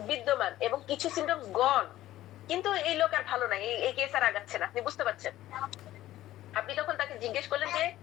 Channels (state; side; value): quieter; right; 14.5 dB